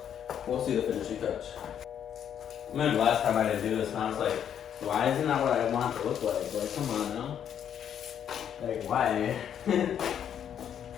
we'll see the finishing touch. I remember last time I didn't do this, and I was like, why isn't that what I want it to look like? Like, come on now. Like, why?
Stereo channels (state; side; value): quieter; right; 9.1 dB